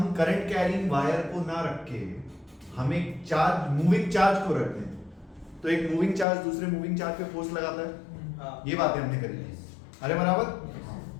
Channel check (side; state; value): right; drops out; at 6.2 s